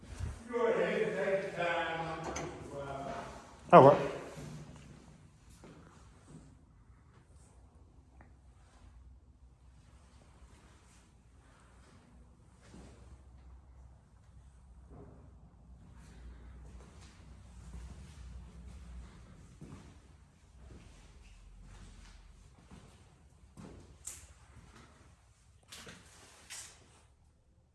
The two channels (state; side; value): identical; both; correlation 1.00